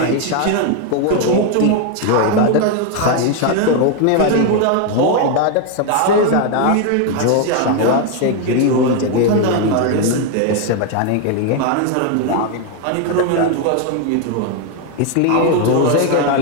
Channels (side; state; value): both; different; correlation 0.01